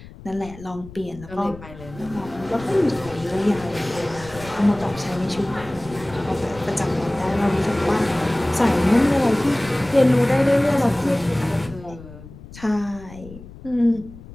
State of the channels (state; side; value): noise; left; rumble, 17 dB below the sound